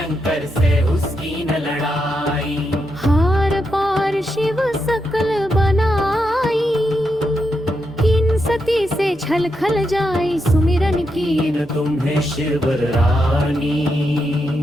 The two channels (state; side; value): normal; both; correlation 0.84